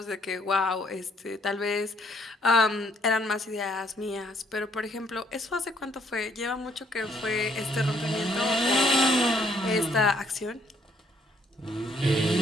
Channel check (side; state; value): both; normal; correlation 0.67